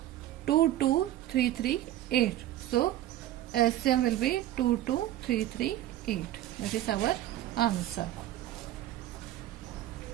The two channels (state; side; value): quieter; left; 13.6 dB